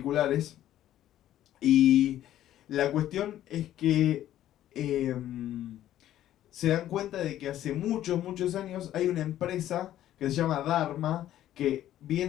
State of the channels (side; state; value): right; quieter; 12.6 dB